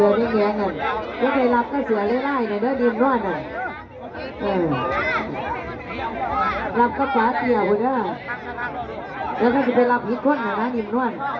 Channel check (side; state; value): both; identical; correlation 1.00